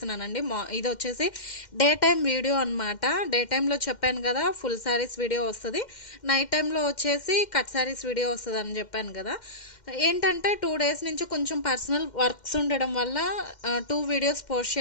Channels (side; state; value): right; late; 2.1 ms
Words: ఇది వచ్చేసి డే టైం వీడియో అనమాట. డే టైంలో చెప్పాను కదా ఫుల్ శారీస్ వీడియో వస్తుంది, నైట్ టైంలో వచ్చేసి కట్ శారీస్ వీడియో వస్తుంది అని చెప్పాను కదా. ఏంటంటే 2 డేస్ నుంచి కొంచెం పర్సనల్ వర్క్స్ ఉండడం వల్ల 2 వీడియోస్ పోస్ట్